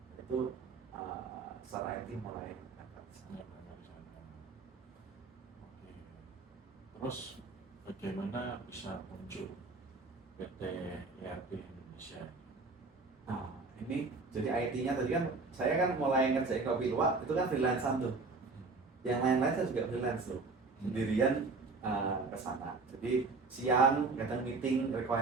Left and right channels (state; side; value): quieter; left; 3.9 dB